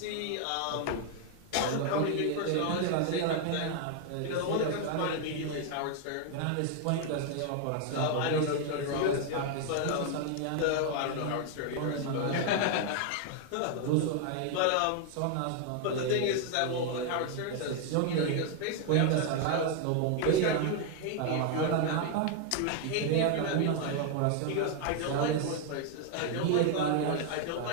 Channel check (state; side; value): different; both; correlation 0.00